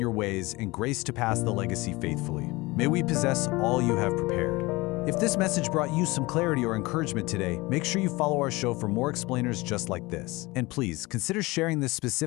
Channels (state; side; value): quieter; right; 22.4 dB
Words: ways, and grace to pass the legacy faithfully. May we possess all you have prepared. If this message brought you some clarity or encouragement today, make sure you follow our show for more explainers just like this. And please, consider sharing this